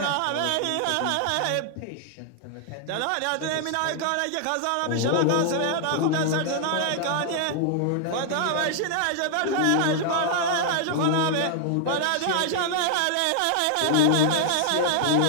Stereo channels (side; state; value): both; different; correlation 0.00